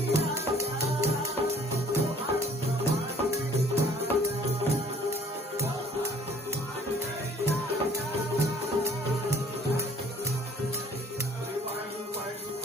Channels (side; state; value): both; normal; correlation 0.56